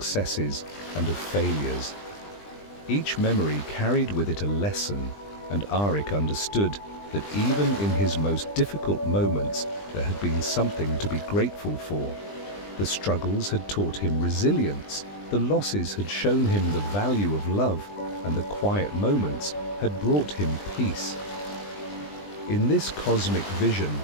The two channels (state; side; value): late; right; 20 ms